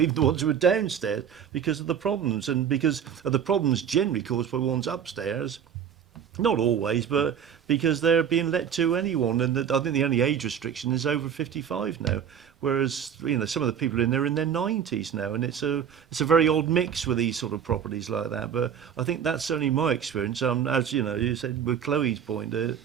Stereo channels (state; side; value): quieter; left; 8.3 dB